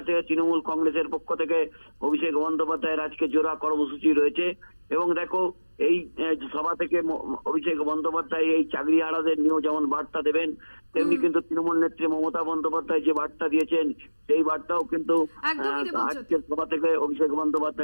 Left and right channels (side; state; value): both; inverted; correlation -1.00